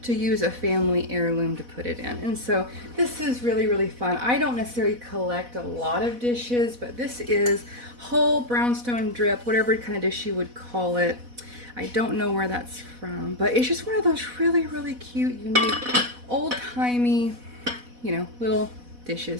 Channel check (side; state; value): left; late; 4.1 ms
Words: to use a family heirloom to put it in. And so this is really, really fun. I don't necessarily collect a lot of dishes, but this is whole brownstone drip, whatever kind of dish you would call it. I don't know where that's from, but it's just one of those really, really cute, unique, old-timey, you know, little